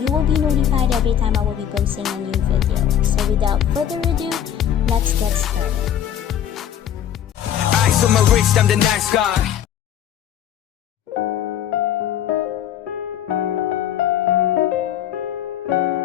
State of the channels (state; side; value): quieter; right; 10.0 dB